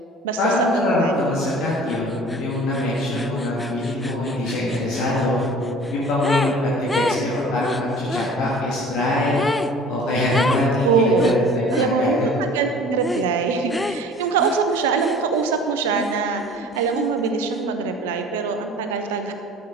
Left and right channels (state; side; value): normal; both; correlation 0.46